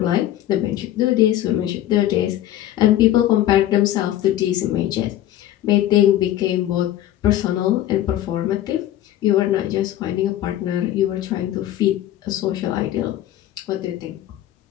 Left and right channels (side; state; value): right; quieter; 13.0 dB